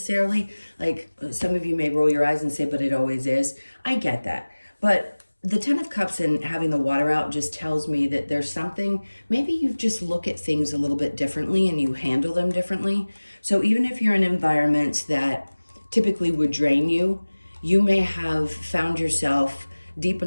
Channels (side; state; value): both; inverted; correlation -1.00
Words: Like some of you may roll your eyes and say, but it always is. I get that. But the 10 of Cups and having the water out just tells me that there's something, maybe you just look at things a little bit differently and you handle them differently. So even if you're in environments that typically would drain you, you may have found yourself deep